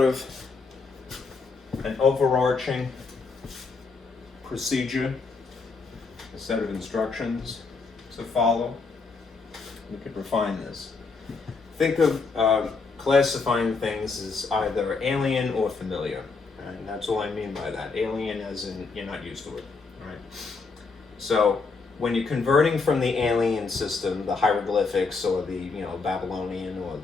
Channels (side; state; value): right; quieter; 4.4 dB